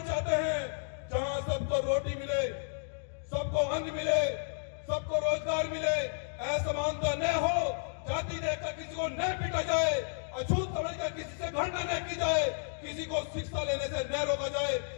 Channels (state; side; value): silent; right; digital silence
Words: चाहते हैं जहां सबको रोटी मिले, सबको अन्न मिले, सबको रोजगार मिले, असमानता न हो, जाति देखकर किसी को न पीटा जाए, अछूत समझकर किसी से घृणा न की जाए, किसी को शिक्षा लेने से न रोका जाए,